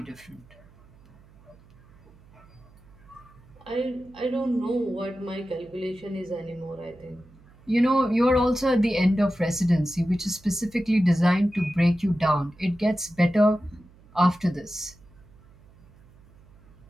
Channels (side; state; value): right; noise; hum, 26 dB below the sound